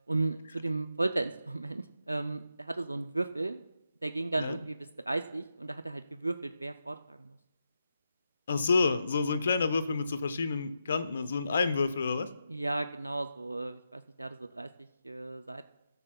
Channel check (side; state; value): both; inverted; correlation -0.86